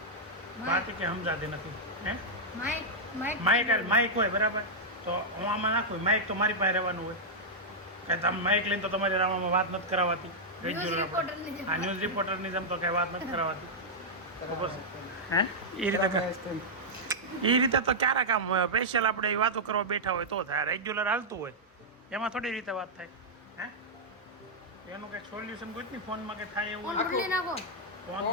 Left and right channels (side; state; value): both; normal; correlation -0.06